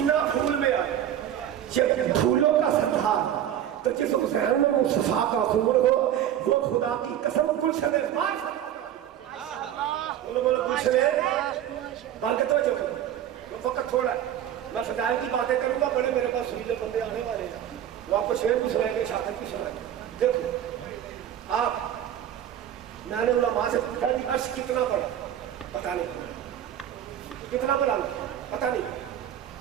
پھول میں آیا جب پھولوں کا سردار تو جس حسین میں مصطفیٰ کا خون ہو وہ خدا کی قسم گلشن پاک بولو بولو گلشن بال کے توجہ کرو وقت تھوڑا ہے میں فضائل کی باتیں کروں گا بڑے میرے پاس سویلے بندے آنے والے ہیں وہ آپ کو شعر بھی سنائیں گے شہادت بھی سنائیں گے دیکھو آپ میں نے علماء سے پوچھا کہ عرش کتنا بڑا پتہ نہیں کتنا بڑا پتہ نہیں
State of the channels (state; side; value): quieter; left; 10.8 dB